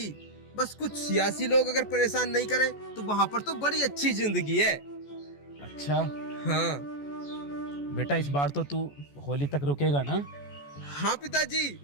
बस कुछ सियासी लोग अगर परेशान नहीं करें तो वहाँ पर तो बड़ी अच्छी जिंदगी है। अच्छा। हाँ बेटा इस बार तो तू होली तक रुकेगा ना? हाँ पिताजी,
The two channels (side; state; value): right; late; 14 ms